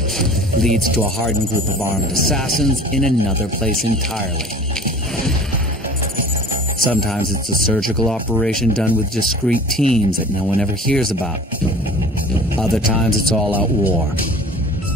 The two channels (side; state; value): both; normal; correlation 0.44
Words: leads to a hardened group of armed assassins in another place entirely. Sometimes it's a surgical operation done with discreet teams that no one ever hears about. Other times it's all-out war.